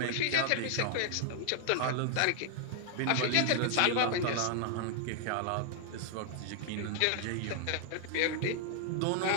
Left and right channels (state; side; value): different; both; correlation 0.00